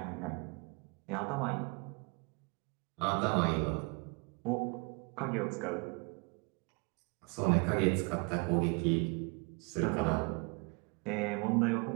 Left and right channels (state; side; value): quieter; left; 31.7 dB